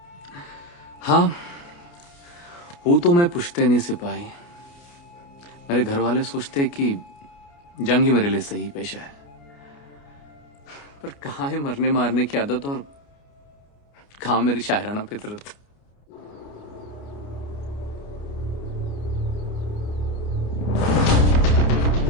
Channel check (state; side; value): late; right; 29 ms